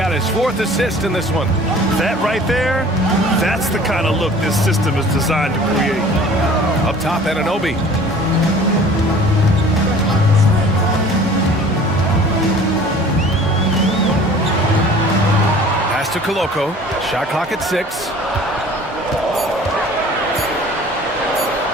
his 4th assist in this one. That right there, that's the kind of look this system is designed to create. Up top, Anunoby. Pass to Koloko. Shot clock at 6.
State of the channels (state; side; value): normal; both; correlation 0.47